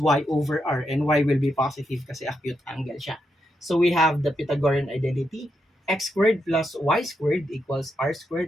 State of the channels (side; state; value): both; normal; correlation 0.83